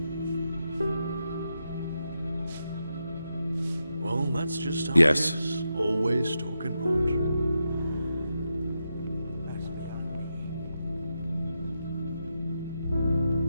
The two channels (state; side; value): inverted; both; correlation -0.86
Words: Well, that's just how Yes. it is. Always talking rot.